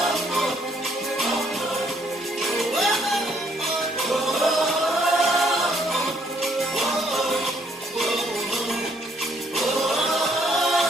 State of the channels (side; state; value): both; normal; correlation 0.67